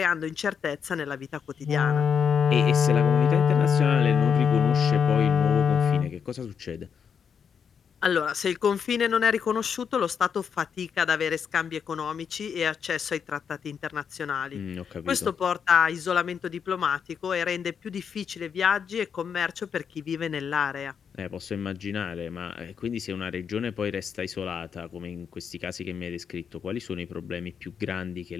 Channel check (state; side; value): quieter; right; 7.1 dB